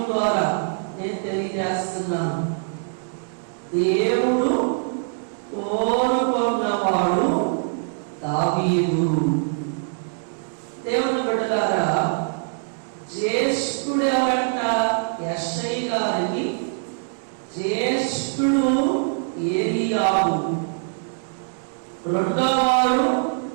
ద్వారా నేను తెలియజేస్తున్నాను. దేవుడు కోరుకున్నవాడు దావీదు. దేవుని బిడ్డలారా, జ్యేష్ఠుడు ఎవరంట? యెషయి గారికి జ్యేష్ఠుడు ఏలీయాబు, రెండోవాడు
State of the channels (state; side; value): silent; left; digital silence